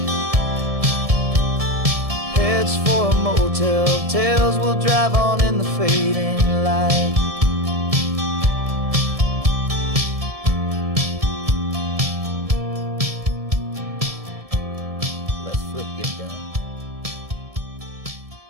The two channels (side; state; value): left; late; 1.7 ms